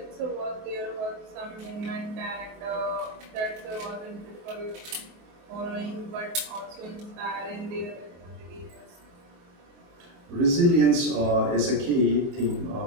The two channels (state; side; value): late; left; 23 ms